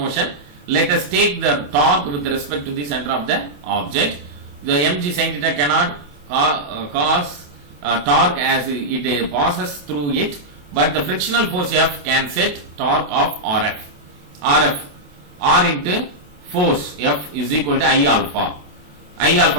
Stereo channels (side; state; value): left; late; 28 ms